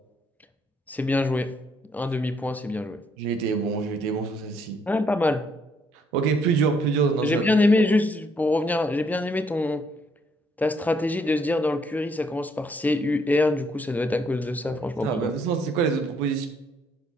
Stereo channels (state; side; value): normal; both; correlation 0.70